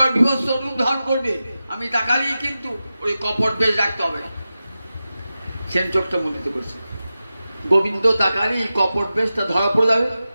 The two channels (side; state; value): both; inverted; correlation -0.93